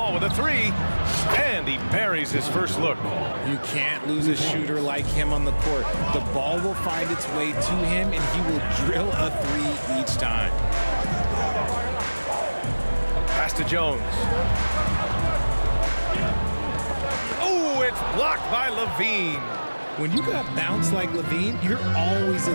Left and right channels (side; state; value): both; inverted; correlation -1.00